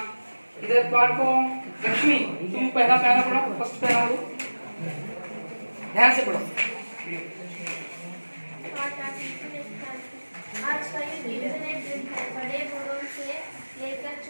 इधर पाठ को लक्ष्मी तुम पहला पैरा पढ़ो, फर्स्ट पैरा पढ़ो, ध्यान से पढ़ो. आज का युग इंटरनेट युग है. बड़े बड़ों से लेकर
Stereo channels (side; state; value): both; inverted; correlation -1.00